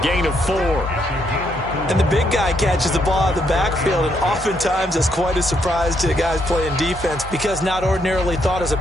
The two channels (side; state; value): both; normal; correlation 0.75